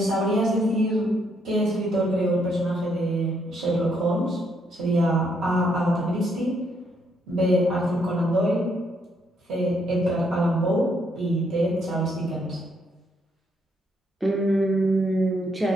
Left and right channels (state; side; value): normal; both; correlation 0.73